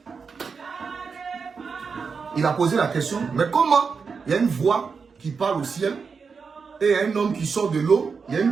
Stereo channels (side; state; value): left; quieter; 5.4 dB